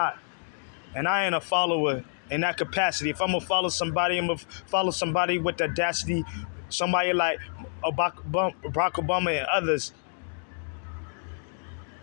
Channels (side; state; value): right; silent; digital silence